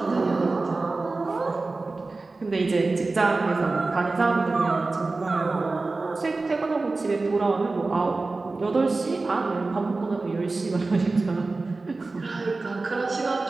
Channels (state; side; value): quieter; left; 3.5 dB